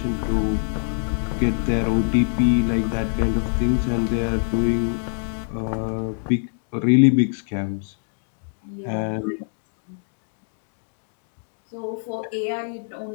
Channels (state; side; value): silent; right; digital silence